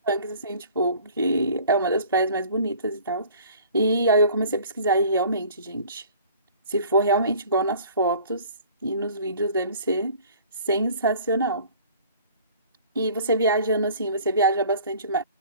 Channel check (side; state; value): both; inverted; correlation -0.49